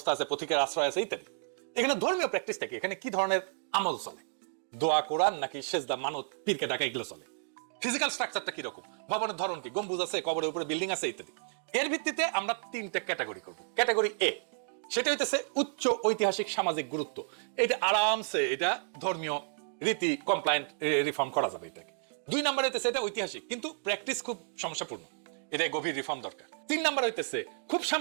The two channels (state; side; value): silent; left; digital silence